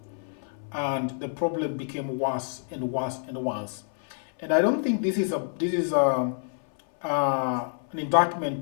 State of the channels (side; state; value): right; silent; 59 dB below the other